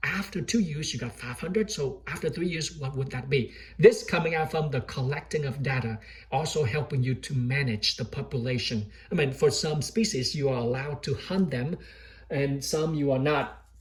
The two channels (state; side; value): identical; both; correlation 1.00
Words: After 2 years, you got 500. So after 3 years, what would that be? This coming out from the collecting of data, also helping you to manage the population. I mean, for some species, you are allowed to hunt them, and some you are not